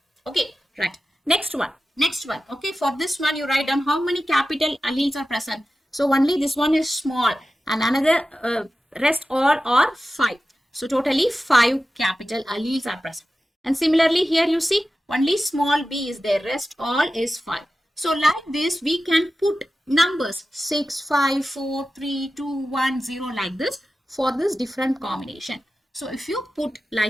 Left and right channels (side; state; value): both; normal; correlation 0.94